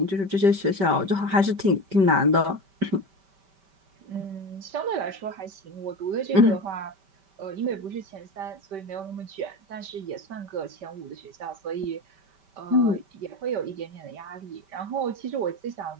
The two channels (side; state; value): left; late; 5.1 ms